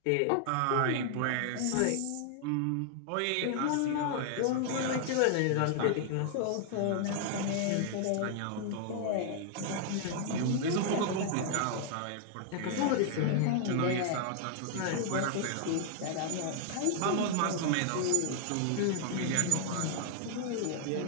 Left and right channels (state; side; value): different; both; correlation 0.00